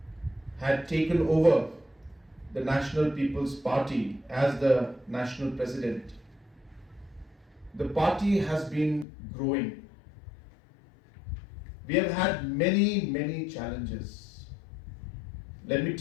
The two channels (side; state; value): right; drops out; at 9.1 s